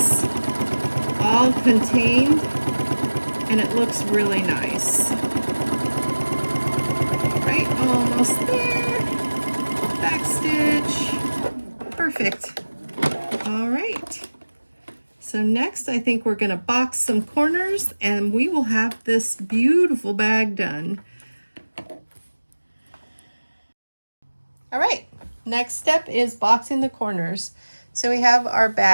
all contained and it looks really nice. All right, almost there. Back stitch. Perfect. All right. So next, I think we're gonna box some corners and we will have this beautiful bag done. All right, next step is boxing the corners. So we have our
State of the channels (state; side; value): inverted; both; correlation -1.00